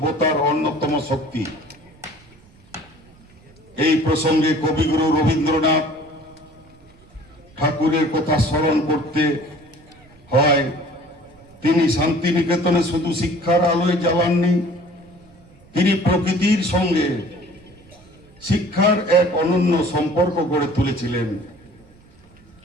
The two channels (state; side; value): noise; right; rumble, 27 dB below the sound